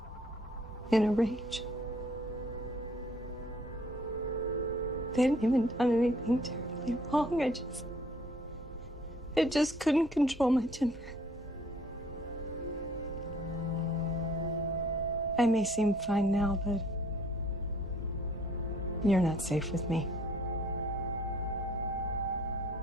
in a rage. They hadn't even done anything terribly wrong. I just couldn't control my temper. I may seem fine now, but you're not safe with me.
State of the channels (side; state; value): both; normal; correlation 0.59